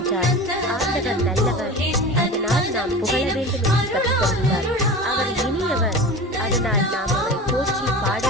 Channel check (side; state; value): both; normal; correlation 0.32